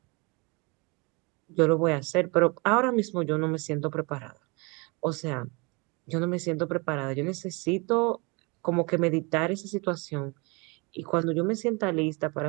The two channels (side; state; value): left; quieter; 29.1 dB